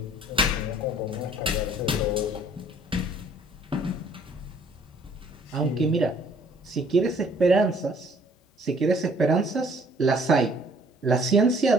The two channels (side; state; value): both; normal; correlation 0.58